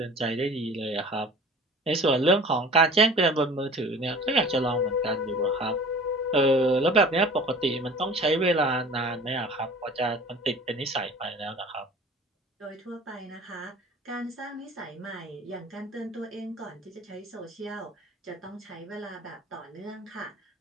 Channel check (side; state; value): both; normal; correlation 0.44